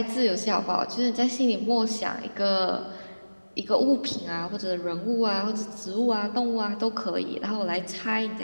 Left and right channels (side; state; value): both; inverted; correlation -1.00